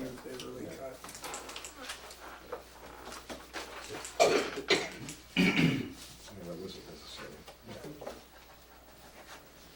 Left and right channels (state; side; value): identical; both; correlation 1.00